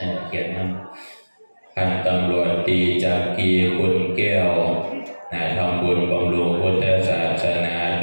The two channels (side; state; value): both; inverted; correlation -1.00